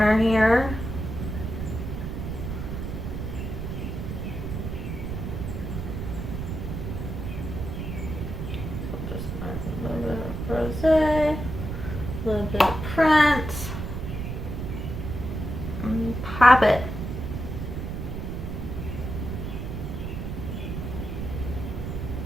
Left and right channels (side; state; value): right; noise; rumble, 5 dB below the sound